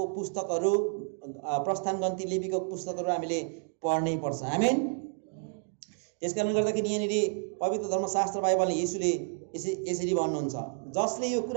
पुस्तकहरू, प्रस्थान गन्ती लेवीको पुस्तकहरू हामीले पढ्नै पर्छ। आमेन। त्यसकारणले गर्दाखेरि यहाँनिर पवित्र धर्मशास्त्र बाइबलले येशूले यसरी भन्नुहुन्छ, जसले यो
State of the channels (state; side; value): silent; left; 58 dB below the other